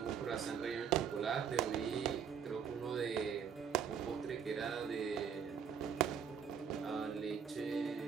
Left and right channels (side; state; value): left; quieter; 7.4 dB